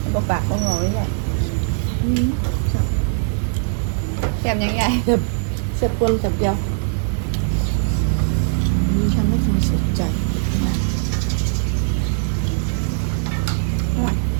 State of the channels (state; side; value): silent; left; digital silence